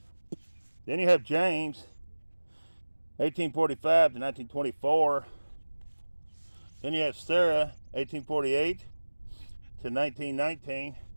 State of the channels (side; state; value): both; inverted; correlation -1.00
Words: Then you have James, 1845 to 1924. Then you have Sarah, 1848 to 1919.